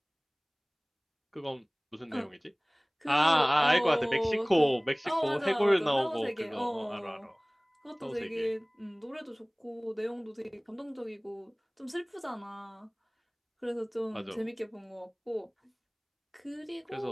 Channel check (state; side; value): identical; both; correlation 1.00